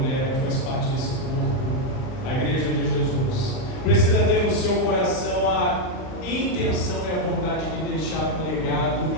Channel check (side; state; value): right; late; 39 ms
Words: que faz parte desse corpo, a igreja de Jesus, precisa ter no seu coração a intenção e a vontade de deixar um legado